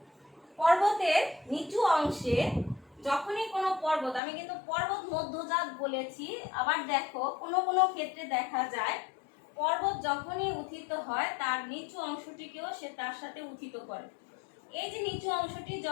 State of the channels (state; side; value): drops out; right; at 4.2 s